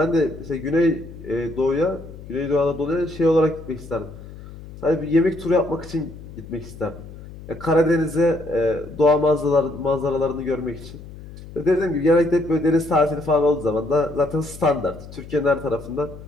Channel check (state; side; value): noise; left; hum, 15 dB below the sound